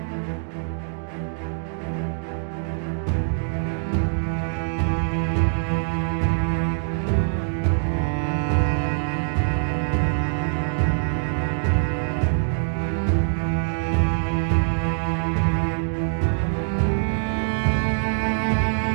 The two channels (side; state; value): left; silent; digital silence